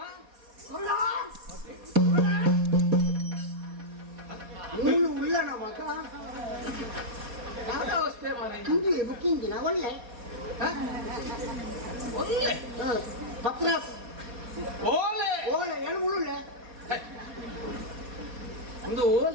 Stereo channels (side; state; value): left; late; 4.2 ms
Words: ನೀನು ಉಳ್ಳಣ ಮಗ ಯಾವ್ದು ಅವಸ್ಥೆ ಮಾರಿ ಹಿಂದಿ ಬುಕ್ಕಿಂಗಿನ ಒಳ್ಳೆ ಒಳ್ಳೆ ಪತ್ರ ಓಲೆ ಓಲೆ ಏನು ಮುಳ್ಳುಳ್ಳೆ ಒಂದು